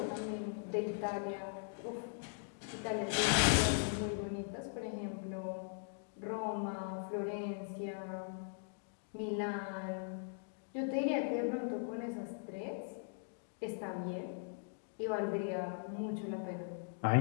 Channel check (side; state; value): right; silent; digital silence